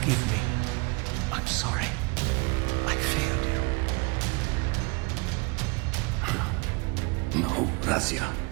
me. I'm sorry. I failed you. No, Raziel.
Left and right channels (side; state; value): left; quieter; 28.8 dB